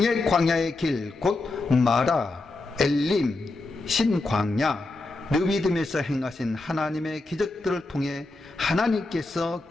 광야의 길, 곧 마라, 엘림, 신광야, 르비딤에서 행하신 하나님의 기적들을 통해 하나님께서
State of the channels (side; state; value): right; quieter; 3.2 dB